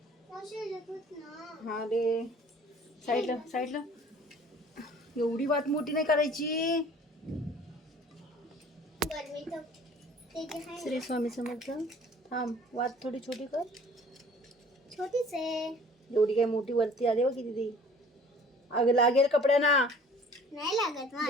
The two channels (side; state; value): both; normal; correlation 0.50